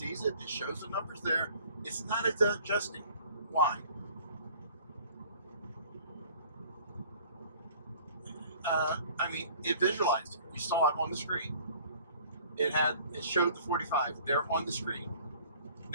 it, it shows the numbers there. It's not adjusting. Why? I mean, it visualized it. You saw it on the screen. It showed the 45 there on the screen.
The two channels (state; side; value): inverted; both; correlation -0.52